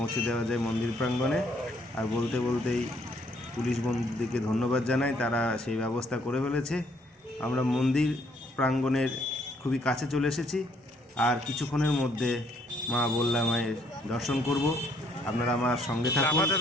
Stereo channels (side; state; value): both; normal; correlation 0.67